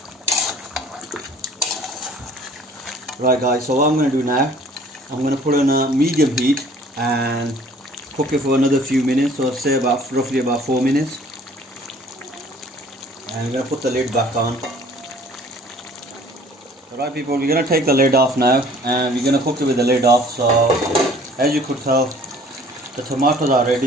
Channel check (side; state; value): both; normal; correlation 0.53